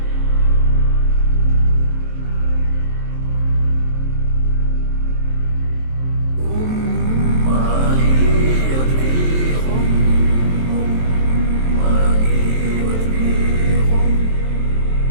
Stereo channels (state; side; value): late; left; 23 ms